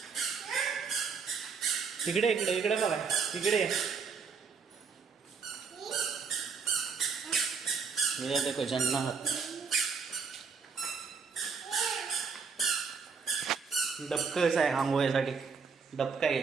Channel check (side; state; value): left; quieter; 5.6 dB